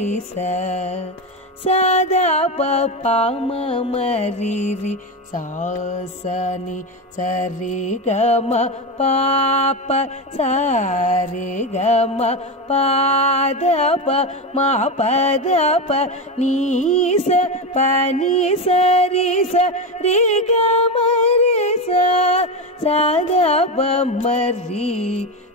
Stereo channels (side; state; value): both; normal; correlation 0.16